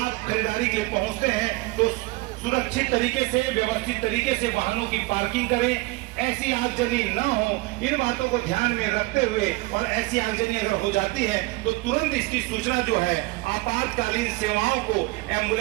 खरीदारी के लिए पहुंचते हैं तो सुरक्षित तरीके से, व्यवस्थित तरीके से वाहनों की पार्किंग करें। ऐसी आगजनी न हो, इन बातों को ध्यान में रखते हुए, और ऐसी आगजनी अगर हो जाती है तो तुरंत इसकी सूचना जो है आपातकालीन सेवाओं को,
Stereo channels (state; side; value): quieter; left; 22.6 dB